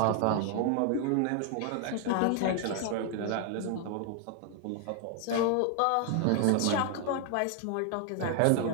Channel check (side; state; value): both; different; correlation 0.00